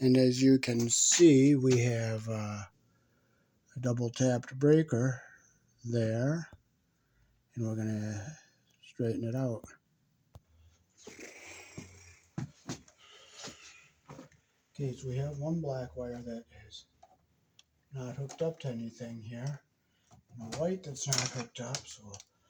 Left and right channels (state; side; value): identical; both; correlation 1.00